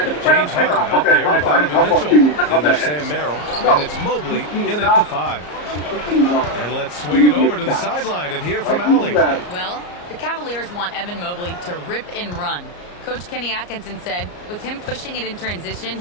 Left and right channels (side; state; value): right; late; 34 ms